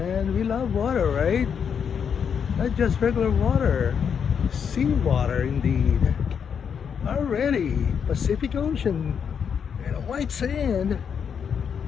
We love water, right? Not just regular water. Sea water, indeed. Already. Pacific Ocean. And white sand.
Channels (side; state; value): right; quieter; 7.2 dB